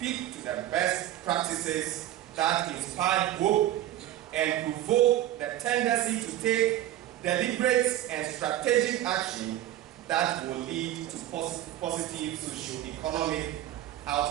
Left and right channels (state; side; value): quieter; left; 13.3 dB